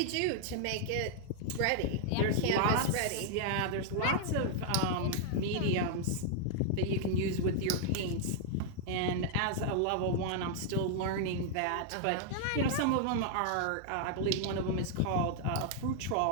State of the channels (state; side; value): different; both; correlation 0.00